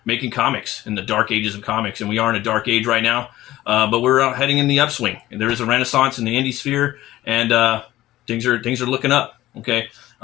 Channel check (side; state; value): right; quieter; 15.7 dB